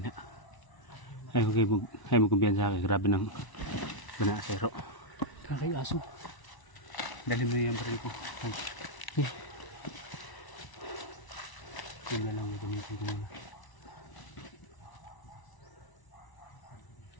Ay mo kumpiyansa kay grabe ng banasero. Kakay aso. Dali mo yung baril ko. Yun na lang yung gamitin ko muna.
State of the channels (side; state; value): right; late; 1.0 ms